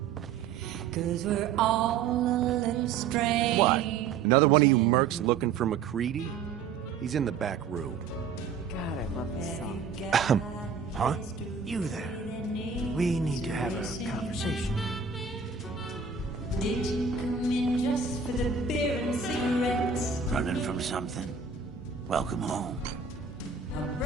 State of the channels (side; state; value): left; quieter; 5.9 dB